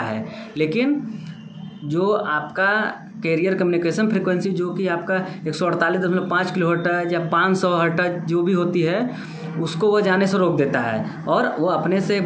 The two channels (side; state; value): both; identical; correlation 1.00